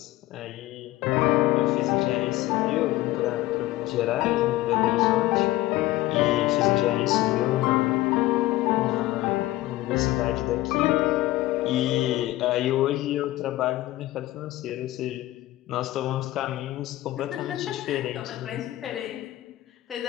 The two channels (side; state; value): right; quieter; 16.8 dB